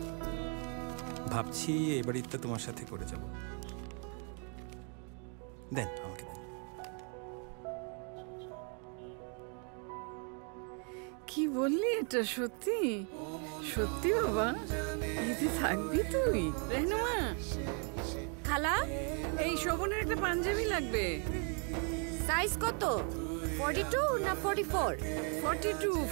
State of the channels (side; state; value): left; quieter; 39.2 dB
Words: ভাবছি এই বাড়িতে তোমার সাথে করে যাব। দেন আমাকে দেন। কি বললি? এটা সত্যি? সত্যি বাবা? ঈদে থাকবি তুই? রেহনুমা, খালা, এই শোভনের একটা পাঞ্জাবি লাগবে। সাইজ কত? 42 না 44? 42,